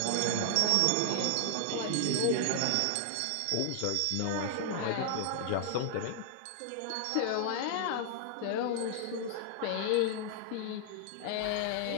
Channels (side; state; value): both; different; correlation -0.01